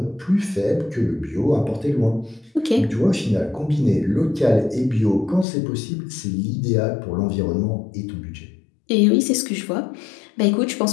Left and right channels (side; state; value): right; drops out; at 5.5 s